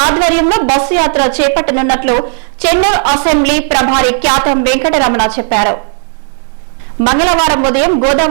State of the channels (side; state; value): left; silent; digital silence